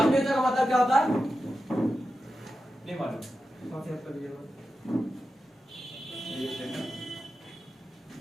का मतलब क्या होता है नहीं मालूम?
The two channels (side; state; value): both; normal; correlation 0.91